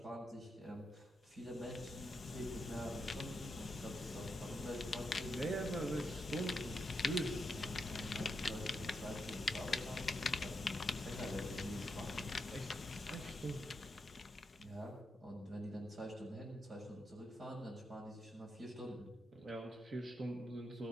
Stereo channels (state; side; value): normal; both; correlation 0.84